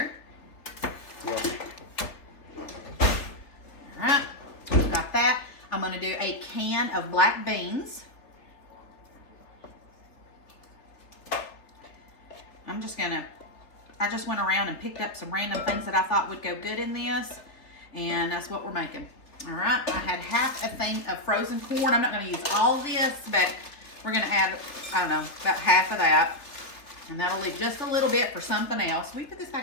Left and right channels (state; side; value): late; right; 3.6 ms